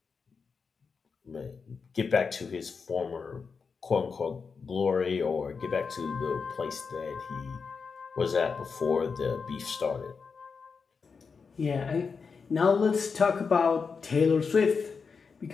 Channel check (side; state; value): right; quieter; 5.3 dB